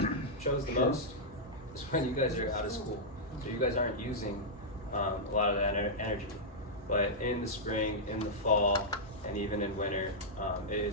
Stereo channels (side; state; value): both; normal; correlation -0.08